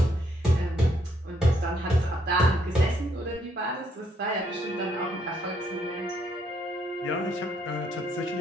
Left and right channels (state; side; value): normal; both; correlation 0.72